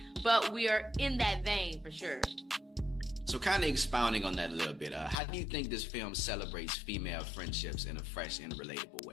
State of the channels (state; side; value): drops out; right; at 5.2 s